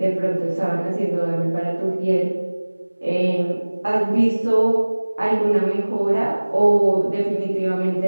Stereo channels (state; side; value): inverted; both; correlation -1.00